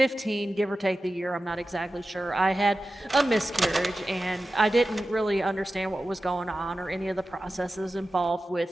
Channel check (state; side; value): normal; both; correlation 0.94